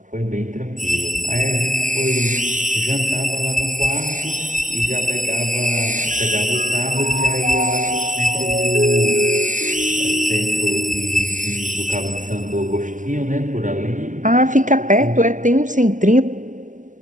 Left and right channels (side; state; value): left; late; 0.37 ms